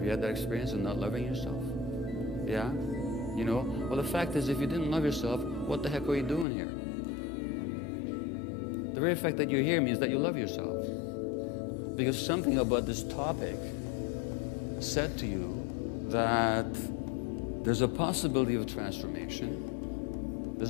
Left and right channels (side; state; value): right; drops out; at 6.5 s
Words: you had that experience of not loving yourself? Yeah? You know? Well, the fact is, if you didn't love yourself, what the heck are you doing here? The very fact that you're here means that you love yourself. Because something about this topic said to you that there's a possibility of transformation.